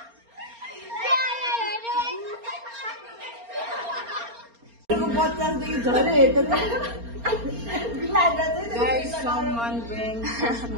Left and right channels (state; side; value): late; left; 4.3 ms